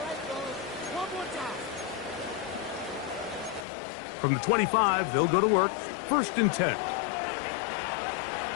From the 25, they'll go to work. 1st and 10.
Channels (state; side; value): drops out; right; at 3.7 s